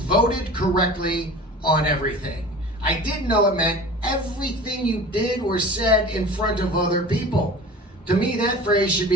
correctly on everything. I didn't know it meant everything you did or said in front of other people. To me, that phrase should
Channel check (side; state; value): both; normal; correlation 0.39